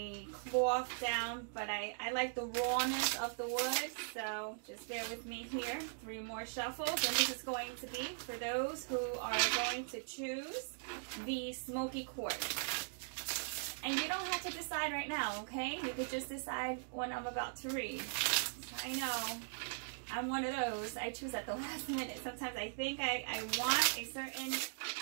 cloth down, but I like the rawness of the wood, so just bear with me here. 3 more shuffles, and this is going to be for those who are going to choose the smoky quartz. And you don't have to decide right now, okay? You could just decide when I'm about to read. I know I'm one of those. I choose at the last minute. Sometimes I think I want a certain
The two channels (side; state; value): left; silent; digital silence